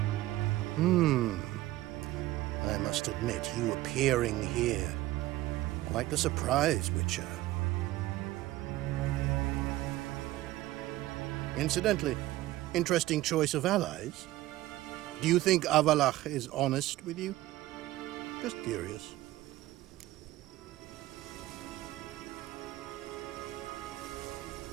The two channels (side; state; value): left; quieter; 16.6 dB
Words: I must admit, you appearing here. Quite the surprise, Witcher. Incidentally, interesting choice of allies. Do you think Avalach is honest with you? Just curious.